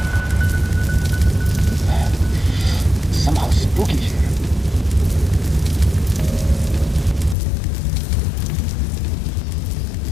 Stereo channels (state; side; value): drops out; right; at 7.4 s